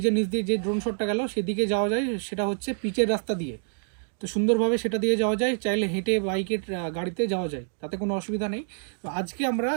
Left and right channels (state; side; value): silent; left; digital silence